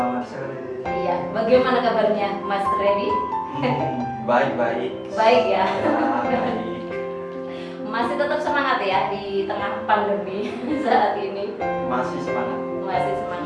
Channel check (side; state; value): both; identical; correlation 1.00